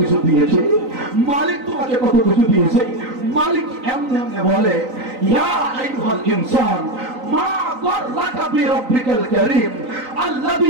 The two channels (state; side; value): late; left; 3.9 ms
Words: দিয়েছে, মালিক তোমাকে কত কিছু দিয়েছে। মালিক এমনি এমনি বলে, ইয়া আইয়ুহাল ইনসান মা গররাকা বিরব্বিকাল কারীম